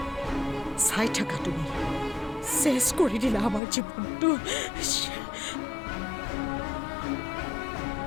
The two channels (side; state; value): right; drops out; at 3.6 s